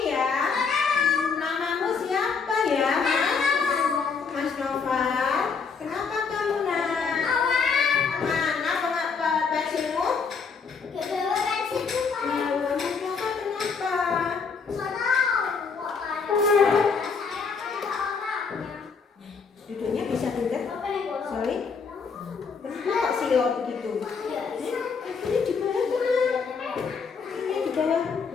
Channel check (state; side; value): quieter; right; 5.5 dB